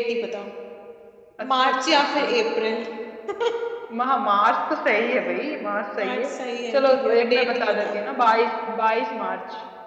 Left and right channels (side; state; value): both; identical; correlation 1.00